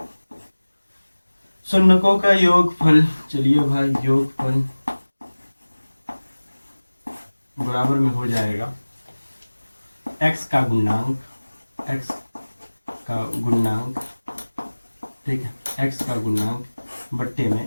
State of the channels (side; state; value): both; inverted; correlation -1.00